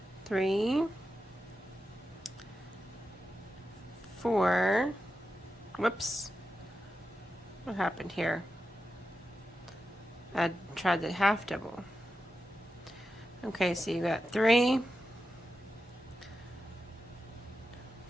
3, 4, whoops, what happened here? I tried the half double. Okay, so you got 3,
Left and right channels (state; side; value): normal; both; correlation 0.90